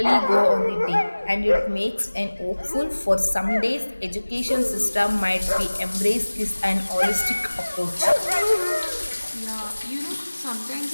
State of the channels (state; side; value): inverted; both; correlation -1.00